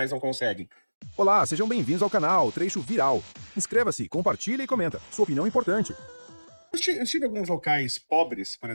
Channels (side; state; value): both; inverted; correlation -1.00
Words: não conseguem? Olá, sejam bem-vindos ao canal Trecho Viral. Inscreva-se, compartilha e comenta. Sua opinião é importante. Eu estive em alguns locais pobres, por